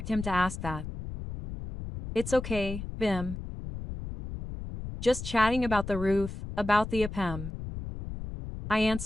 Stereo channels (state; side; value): noise; left; rumble, 8 dB below the sound